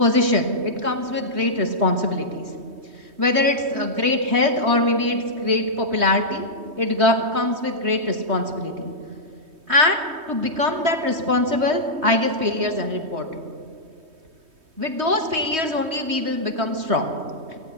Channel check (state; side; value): late; left; 3.2 ms